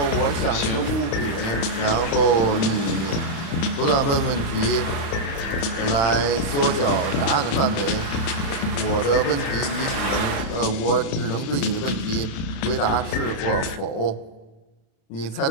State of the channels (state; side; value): late; right; 36 ms